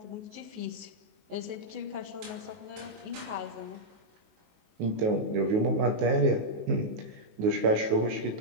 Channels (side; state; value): left; late; 19 ms